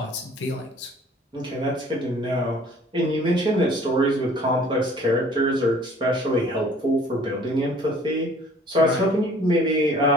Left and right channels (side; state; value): both; normal; correlation 0.53